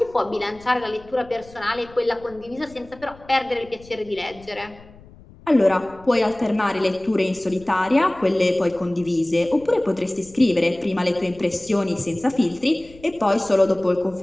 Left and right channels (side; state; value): left; noise; rumble, 23 dB below the sound